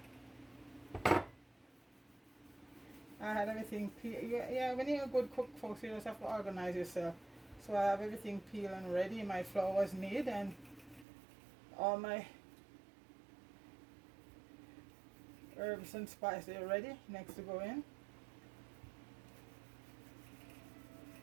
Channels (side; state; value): left; drops out; at 11.1 s